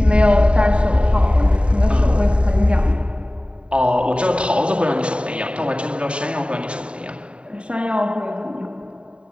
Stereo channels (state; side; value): late; left; 0.055 ms